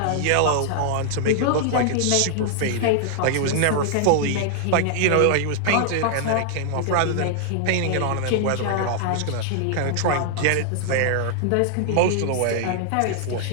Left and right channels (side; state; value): both; different; correlation -0.01